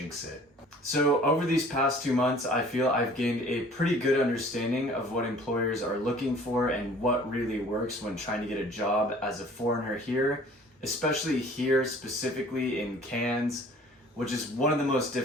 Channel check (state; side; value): normal; both; correlation 0.50